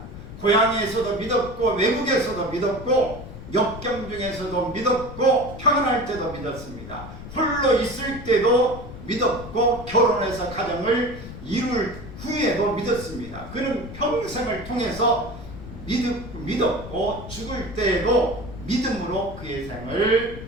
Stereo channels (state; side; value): noise; left; rumble, 12 dB below the sound